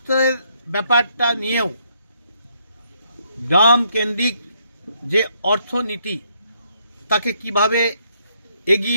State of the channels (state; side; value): inverted; both; correlation -0.72